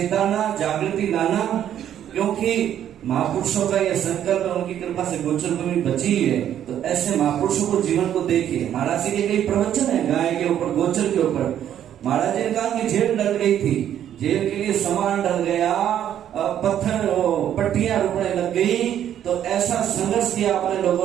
जागृति लाना। क्योंकि महापुरुषों का यह संकल्प है, उनकी कृपा से गोचर भूमि बची है। तो ऐसे महापुरुषों को जीवन को देखिए। महाराज जी के कई प्रवचन है गाय के ऊपर, गोचर के ऊपर। महाराज जी ने कहा कि जेल डल गई थी, जेल के लिए सामान डल गया, पत्थर पट्टियां रुकने लग गई, तो ऐसा संघर्ष किया अपने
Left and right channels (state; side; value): quieter; left; 10.4 dB